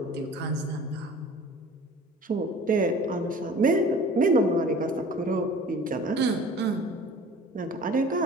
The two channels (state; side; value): normal; both; correlation 0.44